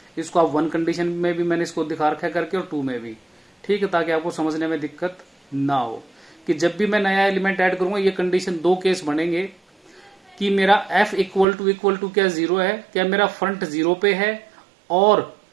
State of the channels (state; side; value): drops out; left; at 11.5 s